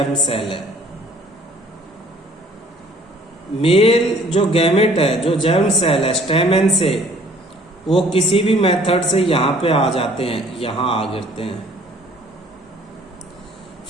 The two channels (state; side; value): normal; both; correlation 0.56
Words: सेल है। मेल जो गैमेट है, जो जर्म सेल है स्टेमेन से, वो किसी भी मेथड से यहां पे आ जाते हैं, यहां आ गिरते हैं।